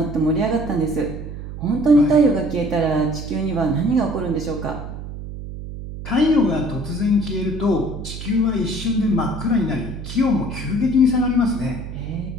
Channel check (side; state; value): right; noise; hum, 9 dB below the sound